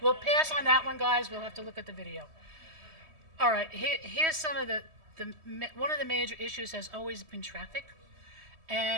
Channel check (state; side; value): late; left; 3.1 ms